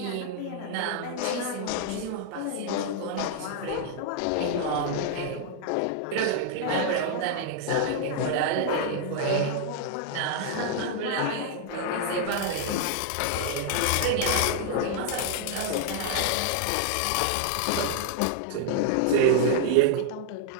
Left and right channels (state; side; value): different; both; correlation -0.01